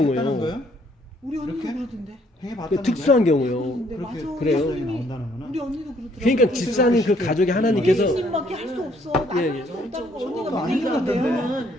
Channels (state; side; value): normal; both; correlation 0.66